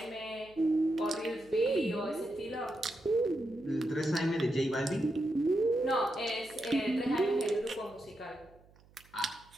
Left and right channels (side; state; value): right; noise; hum, 28 dB below the sound